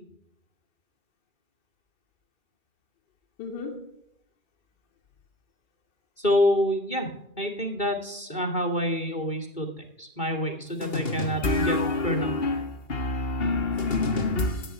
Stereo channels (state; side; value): late; right; 2.8 ms